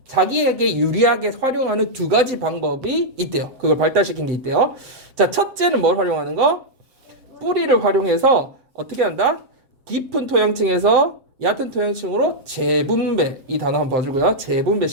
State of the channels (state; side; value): late; left; 7.7 ms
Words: 자기에게 유리하게 활용하는 두 가지 방법이 있대요. 그걸 발달시킨 게 있대요. 자, 첫째는 뭘 활용하는 거? 뿌리를 활용해서 어떻게 한다? 깊은 토양층에서 얕은 토양층으로 재분배. 이 단어 한번 봐주고요.